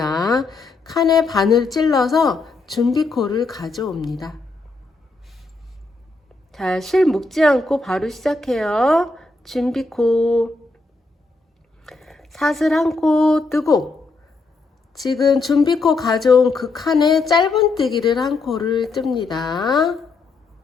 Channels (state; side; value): quieter; right; 3.5 dB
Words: 칸에 바늘 찔러서 준비코를 가져옵니다. 자, 실 묶지 않고 바로 시작해요. 준비코 사슬 한 코 뜨고 지금 준비코 가져온 그 칸에 짧은뜨기를 한 코를 뜹니다.